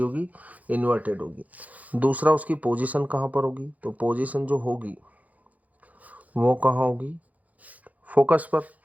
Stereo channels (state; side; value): late; left; 0.076 ms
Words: इन्वर्टेड होगी। दूसरा उसकी पोजीशन कहाँ पर होगी, तो पोजीशन जो होगी वो कहाँ होगी, फोकस पर,